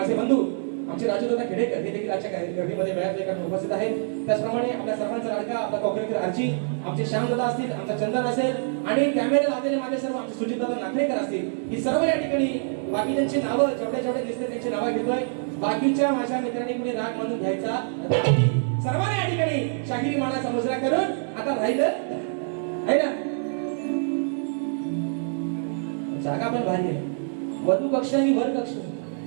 बंधू आमचे राजूदादा खेडेकर हे देखील आजच्या गर्दीमध्ये वेळात एका उपस्थित आहेत. त्याचप्रमाणे आपल्या सर्वांचा लाडका आपला कोकणकर आरची, आमचे श्यामदादा असतील, आमचा चंदन असेल आणि कॅमेरे लावलेले माझे सर्व आमचे सुजितदादा नागरेकर असतील. ही सर्व या ठिकाणी बाकी त्यांची नावं जेवढे जेवढे दिसते त्यांची नावं घेतोय. बाकीच्या माझ्या मित्रांनी कुणी राग मानून घ्यायचा नाही. सर्वांनी या ठिकाणी शाहिरी मानाचा मुजरा करून आता राहिलं आहे ना, जागा पण भारी आहे. वधू कक्ष आणि वर कक्ष.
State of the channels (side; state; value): left; silent; 61 dB below the other